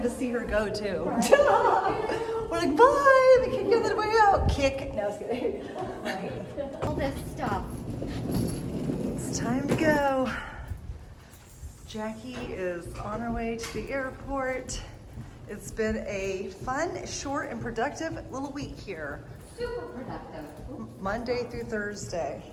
to see her go, too. We're like, bye. The kick the other way out. Kick. No, I was kidding. All this stuff. It's time to go. Jackie is on her way to the airport. It's been a fun, short, and productive little week here. Super productive. Monday through Thursday.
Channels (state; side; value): identical; both; correlation 1.00